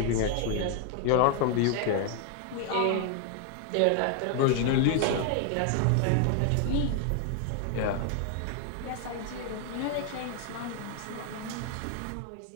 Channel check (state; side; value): different; both; correlation 0.00